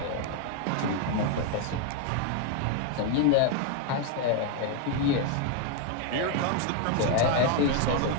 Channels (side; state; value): both; different; correlation 0.01